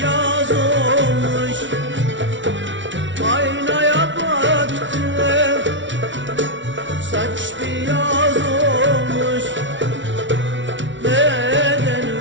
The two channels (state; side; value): late; left; 0.55 ms